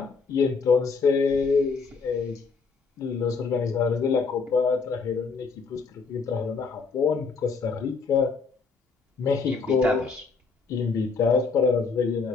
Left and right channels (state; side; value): quieter; right; 4.8 dB